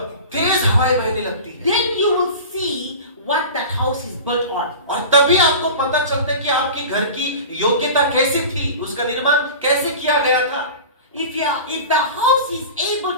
तेज हवाएं बहने लगती है, Then you will see what that house is built on. और तभी आपको पता चलता है कि आपके घर की योग्यता कैसी थी, उसका निर्माण कैसे किया गया था। If the house is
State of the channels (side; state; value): both; inverted; correlation -0.35